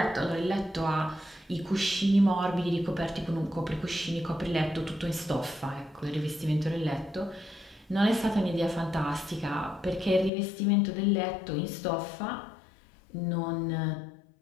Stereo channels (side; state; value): right; drops out; at 10.3 s